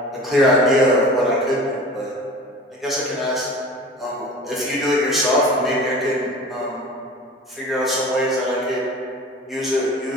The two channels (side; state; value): both; normal; correlation 0.39